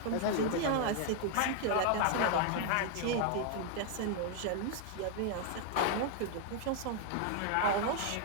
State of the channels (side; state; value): both; different; correlation 0.00